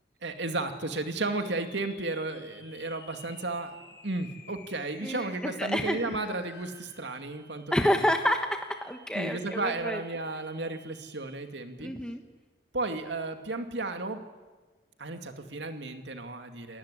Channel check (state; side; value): normal; both; correlation 0.42